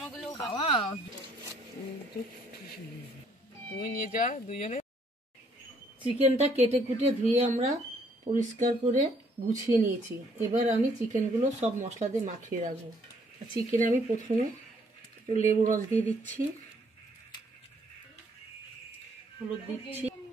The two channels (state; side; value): normal; both; correlation 0.66